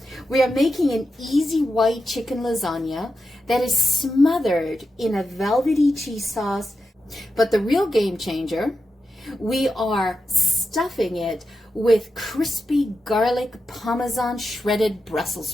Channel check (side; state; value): both; normal; correlation 0.89